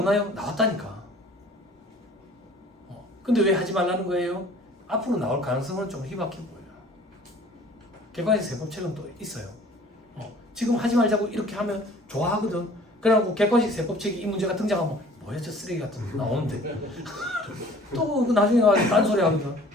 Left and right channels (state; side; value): normal; both; correlation 0.50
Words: 나왔다니까. 근데 왜 하지 말라는 거예요? 앞으로 나올 가능성은 좀 희박해 보여요. 객관식 세법책은 또 있어요. 지금 하지 말자고 이렇게 하면 좋아하거든. 그래갖고 객관식 세법책이 이 문제가 등장하면 뭐야 저 쓰레기 같은 거 나오는데 또 나중에 가서 딴소리 하거든.